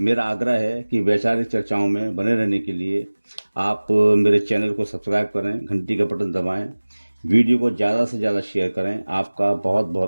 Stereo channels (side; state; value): both; inverted; correlation -1.00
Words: आग्रह है कि वैचारिक चर्चाओं में बने रहने के लिए आप मेरे चैनल को सब्सक्राइब करें, घंटी का बटन दबाएं, वीडियो को ज़्यादा से ज़्यादा शेयर करें। आपका बहुत